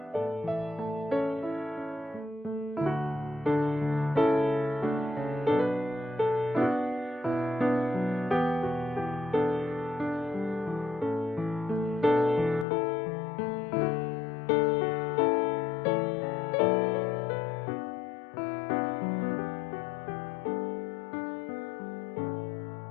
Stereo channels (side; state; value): right; drops out; at 12.7 s